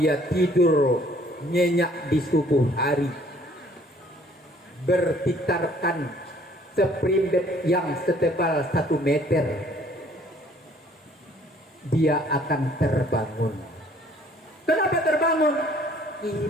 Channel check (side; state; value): both; normal; correlation 0.58